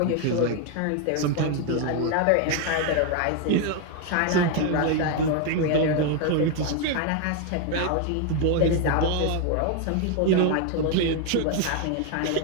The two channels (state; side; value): different; both; correlation 0.01